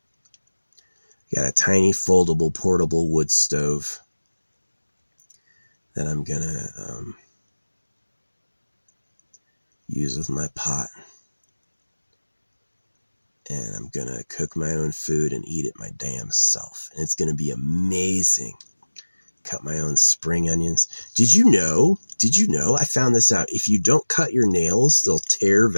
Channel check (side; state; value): both; inverted; correlation -1.00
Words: Got a tiny foldable portable wood stove that I'm gonna use with my pot. And I'm gonna cook my own food and eat it my damn self. And it's gonna be amazing. Cut my own spring onions. Did you know? I found this out. If you don't cut your nails, they'll tear